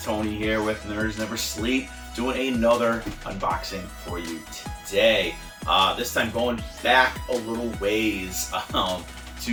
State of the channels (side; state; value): both; identical; correlation 1.00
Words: Tony here with Nerds Never Sleep, doing another unboxing for you today. This time going back a little ways